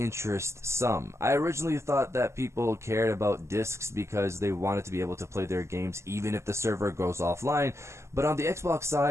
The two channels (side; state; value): left; late; 0.13 ms